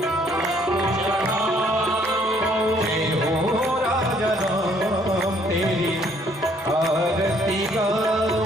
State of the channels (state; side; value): normal; both; correlation 0.64